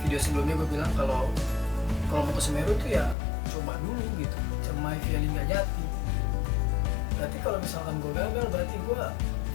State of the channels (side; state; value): right; drops out; at 3.2 s